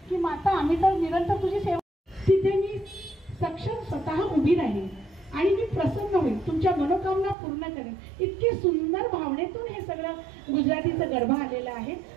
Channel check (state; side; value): drops out; left; at 7.4 s